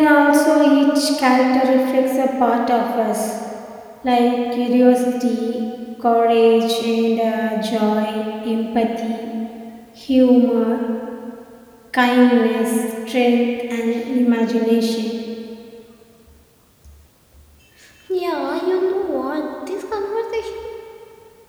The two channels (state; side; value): identical; both; correlation 1.00